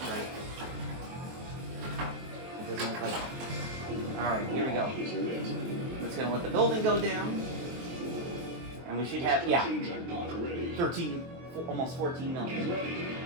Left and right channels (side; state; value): left; late; 23 ms